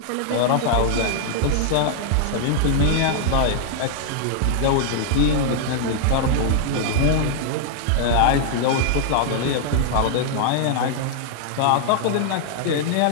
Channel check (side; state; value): both; different; correlation -0.01